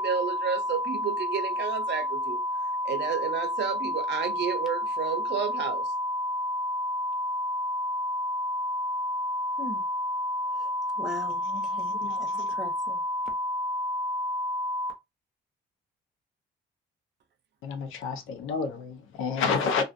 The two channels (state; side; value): normal; both; correlation 0.30